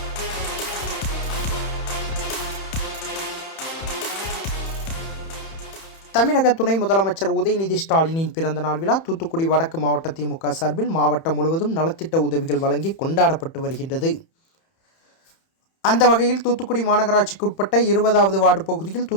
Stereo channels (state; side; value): late; right; 31 ms